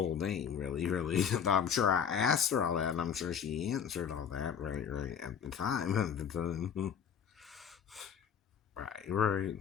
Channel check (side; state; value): right; quieter; 7.6 dB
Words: name, really, really. I'm sure I asked her all that, and I'm sure she answered all that, right, right, at the time. At the time. Right, right.